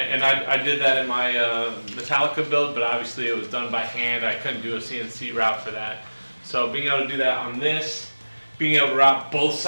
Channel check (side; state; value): both; inverted; correlation -1.00